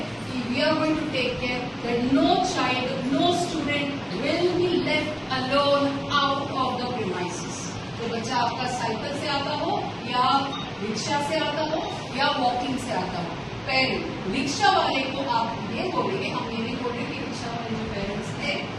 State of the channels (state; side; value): identical; both; correlation 1.00